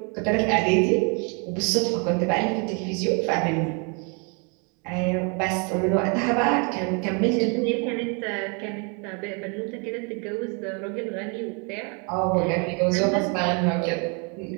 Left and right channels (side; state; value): left; quieter; 34.8 dB